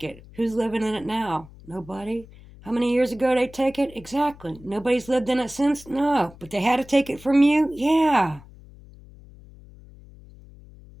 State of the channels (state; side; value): noise; left; hum, 21 dB below the sound